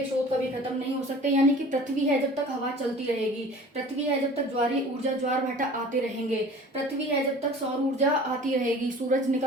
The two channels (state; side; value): normal; both; correlation 0.44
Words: स्रोत कभी खत्म नहीं हो सकते, यानी कि पृथ्वी है जब तक हवा चलती रहेगी, पृथ्वी है जब तक ज्वारीय ऊर्जा, ज्वार भाटा आते रहेंगे, पृथ्वी है जब तक सौर ऊर्जा आती रहेगी, सूरज